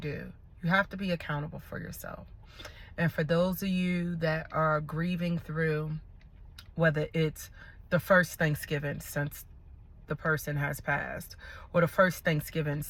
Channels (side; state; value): both; identical; correlation 1.00